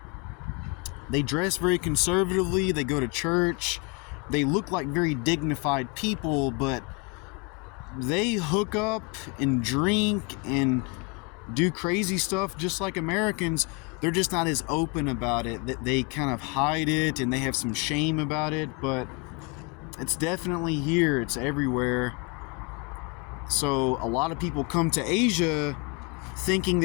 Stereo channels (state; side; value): quieter; right; 29.5 dB